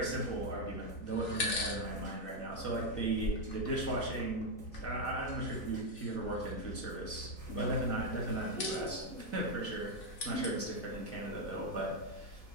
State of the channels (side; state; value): right; late; 3.9 ms